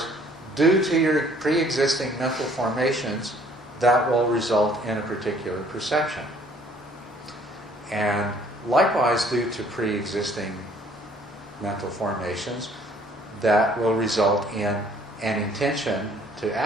due to your pre-existing mental formations, that will result in a particular perception. And likewise, due to pre-existing mental formations, that will result in an intention to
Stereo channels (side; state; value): both; normal; correlation 0.59